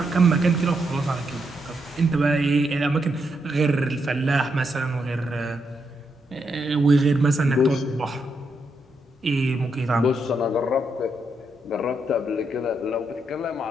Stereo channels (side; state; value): both; normal; correlation 0.80